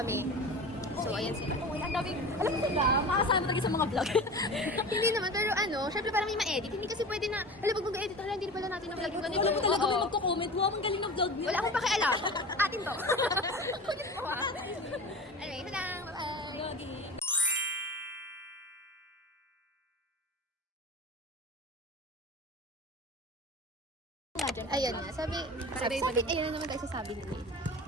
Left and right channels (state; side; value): normal; both; correlation 0.33